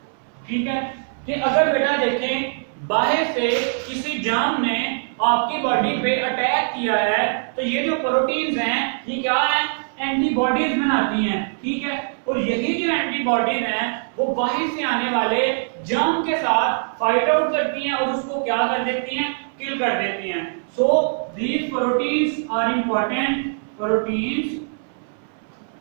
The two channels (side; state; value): left; silent; 64 dB below the other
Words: ठीक है, कि अगर बेटा देखें बाहर से किसी जाम ने आपकी बॉडी पे अटैक किया है तो ये जो प्रोटीन्स हैं ये क्या है एंटीबॉडीज बनाती हैं। ठीक है, और यही जो एंटीबॉडीज हैं वो बाहर से आने वाले जाम के साथ फाइट आउट करती हैं और उसको क्या कर देती हैं, किल कर देती हैं। So these proteins are important, proteins